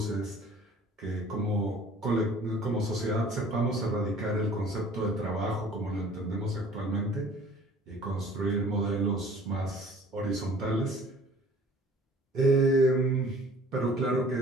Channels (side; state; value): both; normal; correlation 0.51